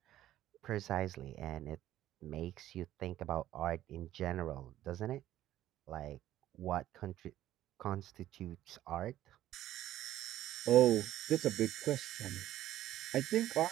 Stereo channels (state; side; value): quieter; left; 13.4 dB